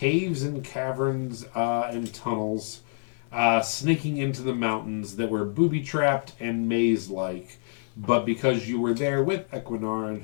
and caverns and tunnels, snaking into the mountains that were booby-trapped and maze-like. But because you were there with Equinaran,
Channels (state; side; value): silent; right; 60 dB below the other